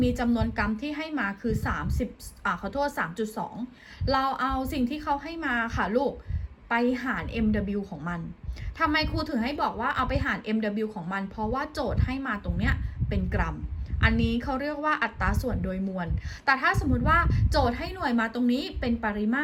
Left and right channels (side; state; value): both; identical; correlation 1.00